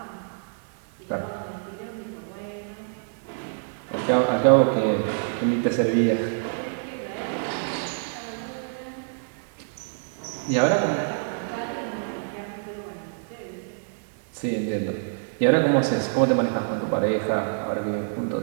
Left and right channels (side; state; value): left; silent; digital silence